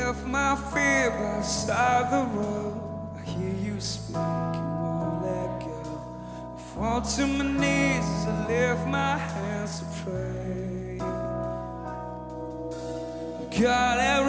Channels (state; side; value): identical; both; correlation 1.00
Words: my fear beside the road. I hear you speak, you won't let go. I fall to my knees as I lift my hands to pray. God, have